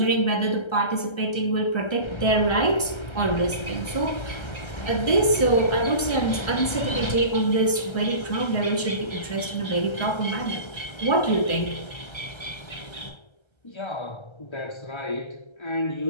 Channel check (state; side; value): late; right; 1.3 ms